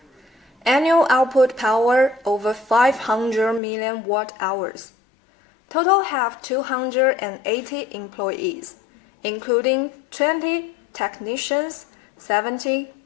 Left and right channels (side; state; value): right; drops out; at 3.6 s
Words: Annual output power over 500 million watt-hours. Total have 280 employees, including 20 technicians, 70